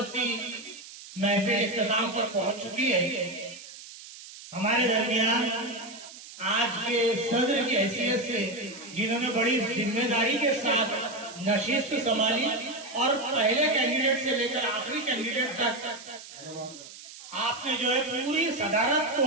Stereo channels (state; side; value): noise; right; hiss, 16 dB below the sound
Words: محفل اختتام پر پہنچ چکی ہے. ہمارے درمیان آج کے صدر کی حیثیت سے جنہوں نے بڑی ذمہ داری کے ساتھ نشست سنبھالی اور پہلے کینڈیڈیٹ سے لے کر آخری کینڈیڈیٹ تک آپ نے جو ہے پوری صدارت